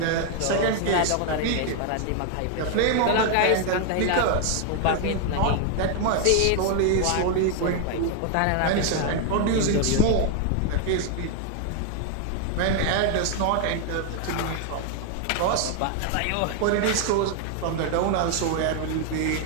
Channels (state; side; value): different; both; correlation 0.00